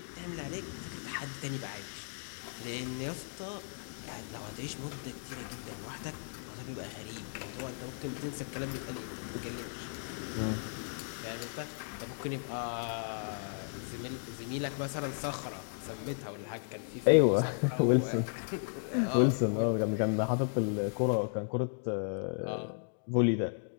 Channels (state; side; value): silent; right; digital silence